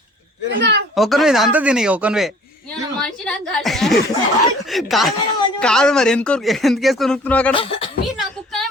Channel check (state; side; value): normal; both; correlation 0.52